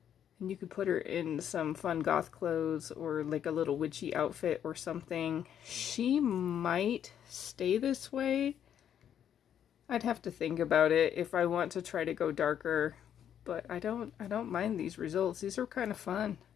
And you could put her in some fun goth clothes or like a little witchy outfit or something. She might stay this way. I'd have to think about it if I want to try to go darker. But I don't mind these results. These are kind of fun.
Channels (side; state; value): right; quieter; 9.4 dB